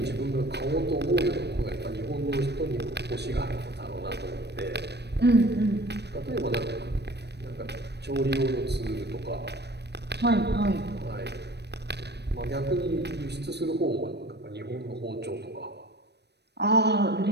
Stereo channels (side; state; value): left; late; 0.49 ms